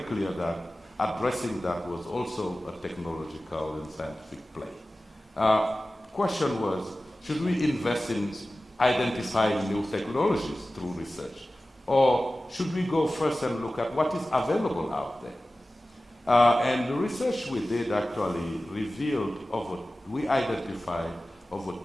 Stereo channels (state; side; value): normal; both; correlation 0.96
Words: clear that addressing that was also a technological and scientific play. Question was, should we invest in identifying new technologies through research? Or should we go first and look at what is available out there? And the research we did actually revealed we identified over